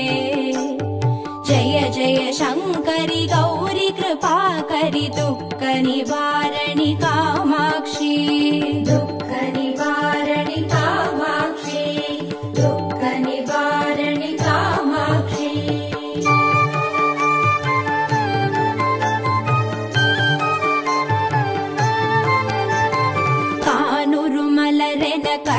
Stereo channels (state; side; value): identical; both; correlation 1.00